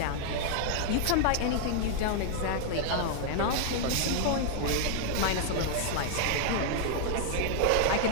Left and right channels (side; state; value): both; different; correlation 0.00